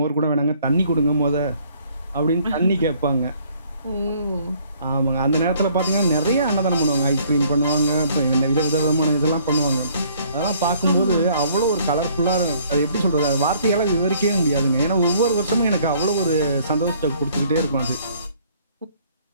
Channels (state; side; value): inverted; both; correlation -0.60